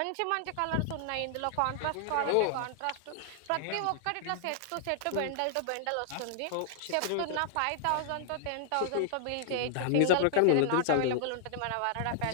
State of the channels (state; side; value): different; both; correlation -0.01